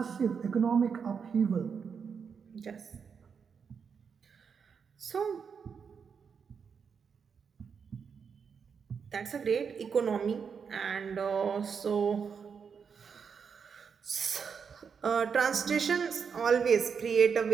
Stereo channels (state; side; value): quieter; left; 6.3 dB